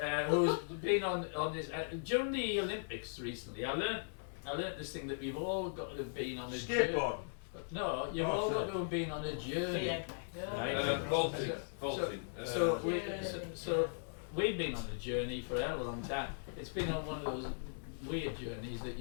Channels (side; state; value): right; silent; digital silence